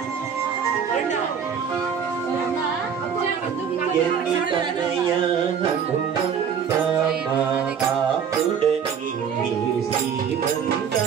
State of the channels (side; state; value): left; quieter; 7.4 dB